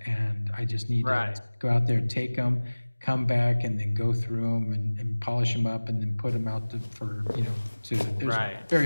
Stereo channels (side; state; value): both; inverted; correlation -1.00